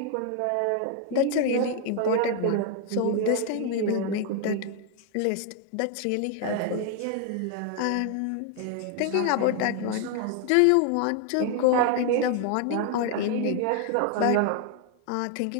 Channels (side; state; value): both; different; correlation 0.00